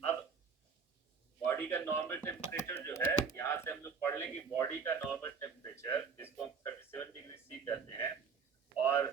अब बॉडी का नॉर्मल टेम्परेचर जो है, यहाँ से हम लोग पढ़ लें कि बॉडी का नॉर्मल टेम्परेचर जिसको हम 37 डिग्री सी कहते हैं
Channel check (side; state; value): left; quieter; 5.7 dB